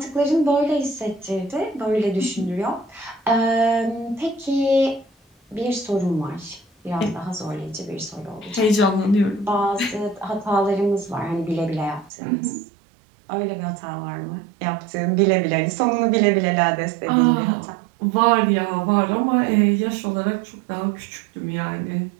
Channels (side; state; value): left; drops out; at 12.1 s